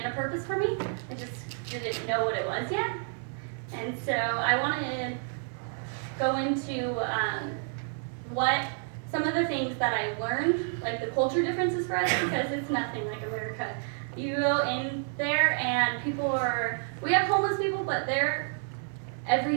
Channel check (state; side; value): silent; left; 58 dB below the other